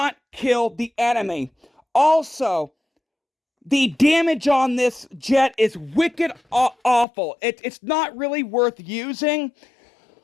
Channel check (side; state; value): right; drops out; at 7.1 s